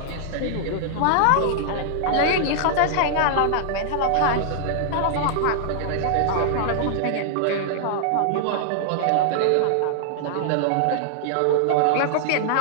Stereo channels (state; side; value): different; both; correlation -0.01